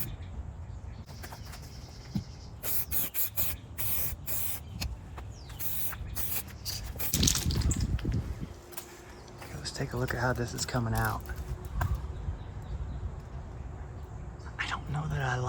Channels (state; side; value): identical; both; correlation 1.00